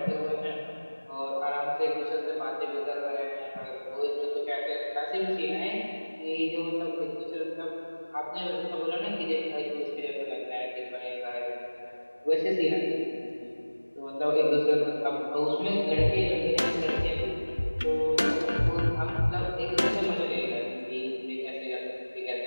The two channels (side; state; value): both; inverted; correlation -1.00